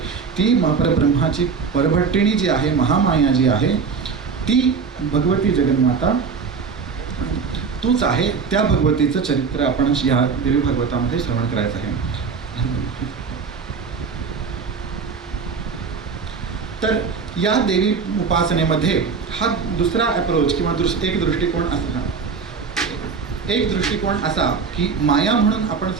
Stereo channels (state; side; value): quieter; left; 5.4 dB